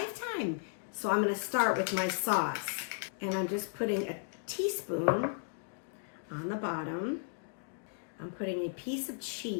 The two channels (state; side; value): silent; right; digital silence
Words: So I'm going to start with my sauce. And I'm just putting a teaspoon on the bottom. I'm putting a piece of